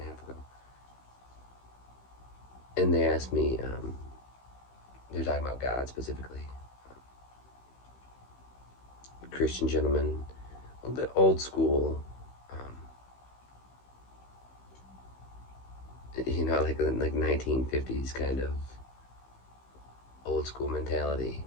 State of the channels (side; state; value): right; late; 15 ms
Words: a half ago, and they asked me. They're talking about God specifically. Christian gentleman, a little bit old school. Like 1950s kind of old school mentality.